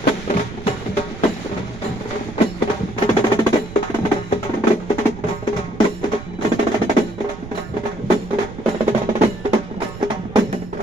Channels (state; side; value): noise; right; rumble, 13 dB below the sound